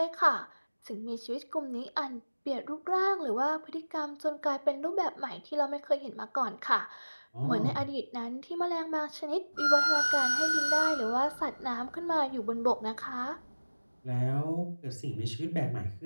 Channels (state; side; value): inverted; both; correlation -1.00